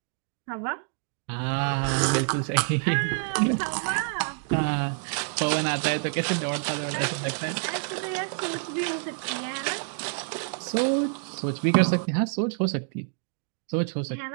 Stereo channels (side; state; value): left; silent; 56 dB below the other